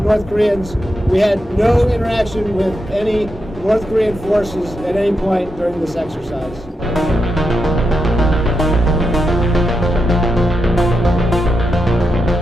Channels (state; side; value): normal; both; correlation 0.86